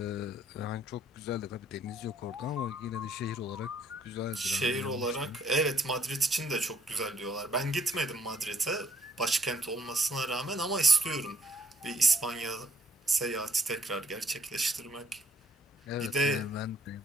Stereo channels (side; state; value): both; normal; correlation 0.66